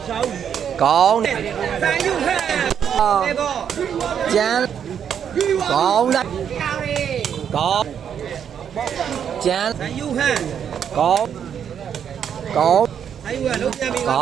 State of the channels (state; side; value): quieter; left; 8.3 dB